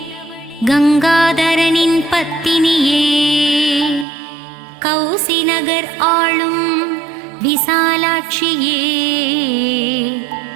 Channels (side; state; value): left; drops out; at 4.0 s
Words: கங்காதரனின் பத்தினியே கௌசி நகர் ஆளும் விசாலாட்சியே